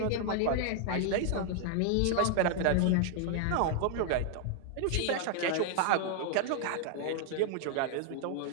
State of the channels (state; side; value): different; both; correlation 0.00